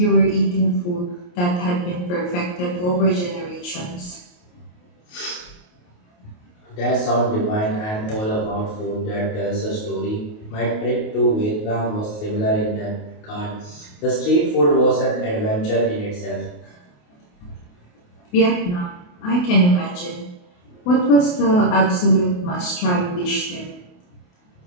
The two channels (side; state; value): right; late; 28 ms